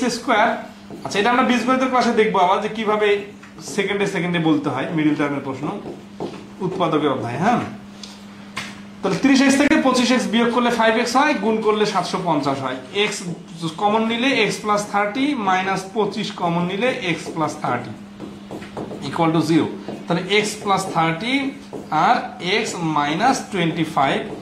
আচ্ছা এটা আমরা বীজগণিতের ক্লাসে দেখবো আবার যে কিভাবে সেকেন্ডে বলতে হয় মিডল টার্মের প্রশ্ন, উৎপাদকের অধ্যায়। হ্যাঁ, তাহলে 30x থেকে 25x বিয়োগ করলে 5x হয়, গুণ করলে 750 হয়। x কমন নিলে x + 30 - 25 কমন নিলে x + 30 = 0। তাহলে x + 30 আর x - 25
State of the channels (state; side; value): identical; both; correlation 1.00